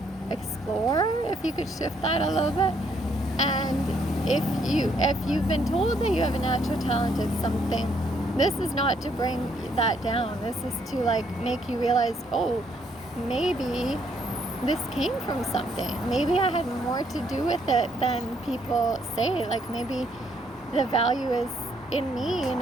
explore if you could shift that a little bit. And if you've been told that you have a natural talent at something, this is not to bring that down. This is to make you realize, oh, maybe this came from something. Maybe I had more to do with it than people say. Like, maybe the value is in me,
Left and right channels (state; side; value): normal; both; correlation 0.70